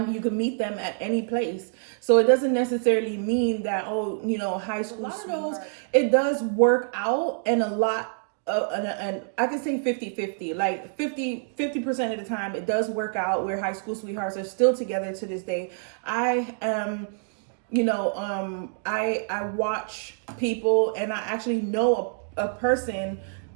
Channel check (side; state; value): left; silent; digital silence